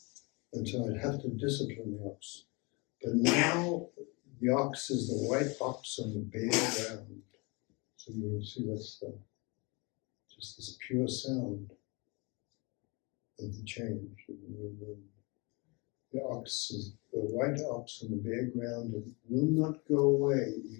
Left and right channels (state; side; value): quieter; right; 28.7 dB